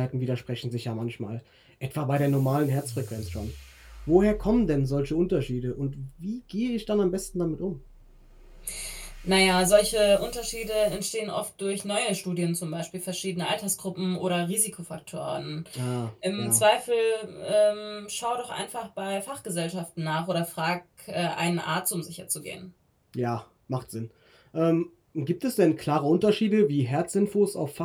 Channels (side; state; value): both; identical; correlation 1.00